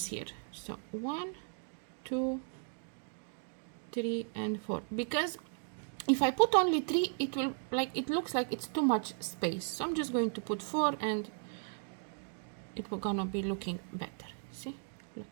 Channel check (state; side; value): silent; left; 54 dB below the other